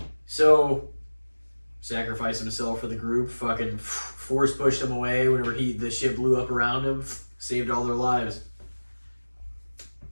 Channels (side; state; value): both; inverted; correlation -1.00